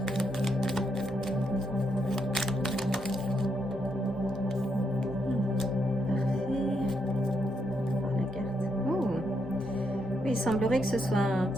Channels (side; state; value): both; normal; correlation 0.79